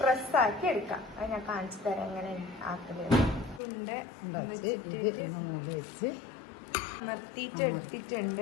ആക്കി എടുക്കാം. അത് ഞാൻ കാണിച്ചു തരാം എങ്ങനെ ആക്കുന്നത്. അമർത്തിയിട്ട്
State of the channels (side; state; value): right; drops out; at 3.6 s